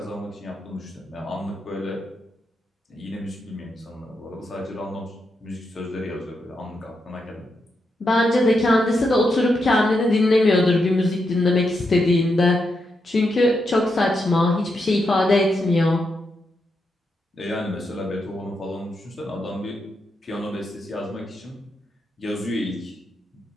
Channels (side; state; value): both; normal; correlation 0.84